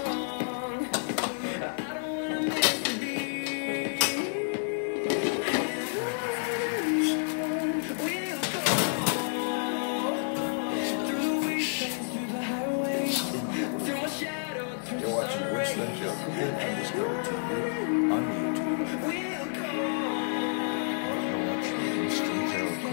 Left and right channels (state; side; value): silent; right; digital silence